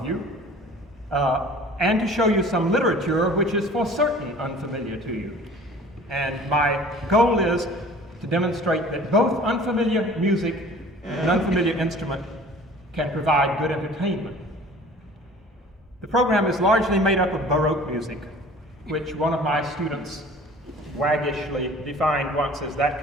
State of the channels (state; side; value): normal; both; correlation 0.46